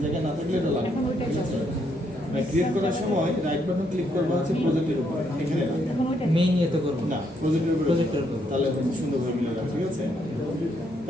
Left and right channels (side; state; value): both; normal; correlation 0.74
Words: জায়গায় না থাকলে এটা লাগবে, ঠিক আছে? ক্রিয়েট করার সময় রাইট বাটন ক্লিক করবো হচ্ছে প্রজেক্টের উপরে, এখানে না, এখন ওইটা মেইন ইয়ে তো করবো না প্রজেক্টের উপরে, প্রজেক্টের উপরে। তাহলে সুন্দরভাবে মিলে যাবে, ঠিক আছে?